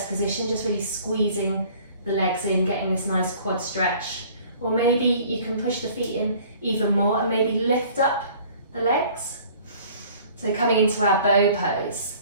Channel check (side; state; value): both; inverted; correlation -0.52